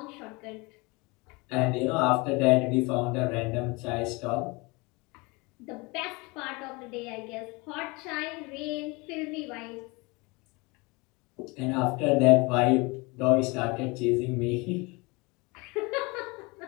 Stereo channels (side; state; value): right; quieter; 26.4 dB